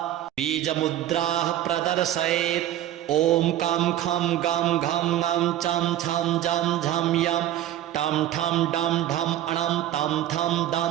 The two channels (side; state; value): left; quieter; 12.6 dB